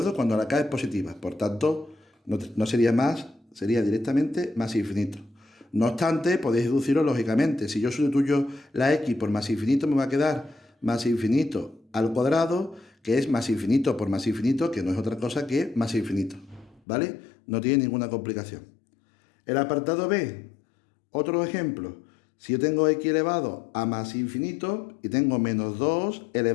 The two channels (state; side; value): drops out; right; at 16.8 s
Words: Cuando la k es positiva. Por tanto, no sería más, sería directamente más infinito. No obstante, podéis deducirlo lógicamente. Si yo sustituyo la x por más infinito, me va a quedar más infinito al cuadrado, que es más infinito por más infinito, que no es otra cosa que más infinito. ¿Vale? No tiene ninguna complicación. El apartado B, otro ejemplo. Si yo tengo x elevado a más infinito y tengo menos 2